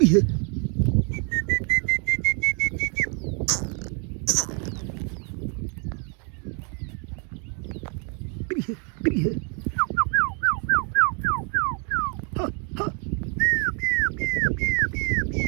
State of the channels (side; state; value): left; quieter; 37.5 dB